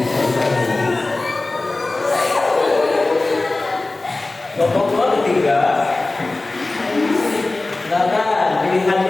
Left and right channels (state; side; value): quieter; right; 3.1 dB